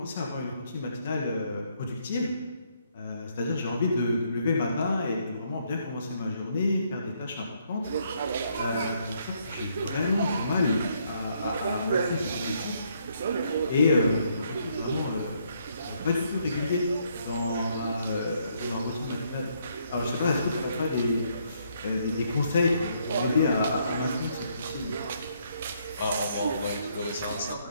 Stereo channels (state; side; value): inverted; both; correlation -0.71